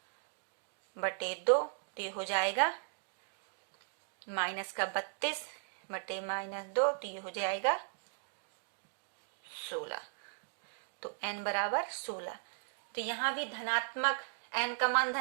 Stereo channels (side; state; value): left; silent; digital silence